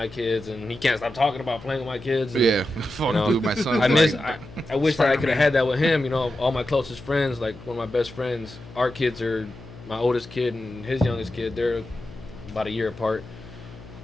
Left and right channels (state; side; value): noise; left; hum, 17 dB below the sound